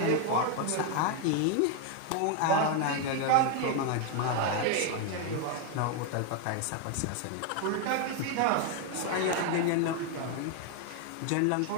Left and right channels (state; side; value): different; both; correlation 0.01